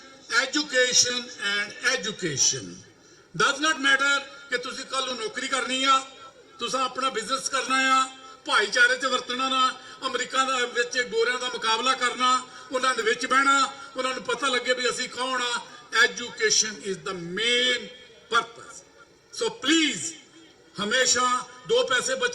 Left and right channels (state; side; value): identical; both; correlation 1.00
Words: education and education does not matter ਕਿ ਤੁਸੀਂ ਕੱਲ ਨੂੰ ਨੌਕਰੀ ਕਰਨੀ ਆ ਤੁਸੀਂ ਆਪਣਾ ਬਿਜ਼ਨਸ ਕਰਨਾ ਆ ਭਾਈਚਾਰੇ 'ਚ ਵਰਤਣਾ ਨਾ ਅਮਰੀਕਾ ਦਾ ਵਿੱਚ ਗੋਰਿਆਂ ਦਾ ਮੁਕਾਬਲਾ ਕਰਨਾ ਉਹਨਾਂ ਦੇ ਵਿੱਚ ਬਹਿਣਾ ਉਹਨਾਂ ਨੂੰ ਪਤਾ ਲੱਗੇ ਵੀ ਅਸੀਂ ਕੌਣ ਆ education is the main purpose so please ਹਮੇਸ਼ਾ 2 ਪੈਸੇ